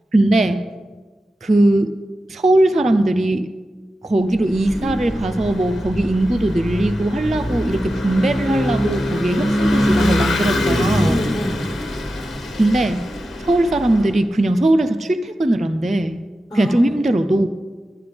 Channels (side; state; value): both; normal; correlation 0.92